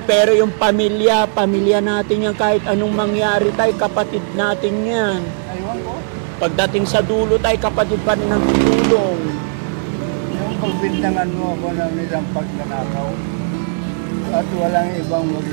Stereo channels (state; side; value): silent; left; digital silence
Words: pero yung pamilya natin yan, kahit anong mangyari, tay, kapatid natin yan. Aywan ko. Pagdating sa dulo, tay, kapatid pa rin ang tutulong. Yung pagbintangan mo ako ng isang pagnanakaw at walang ibang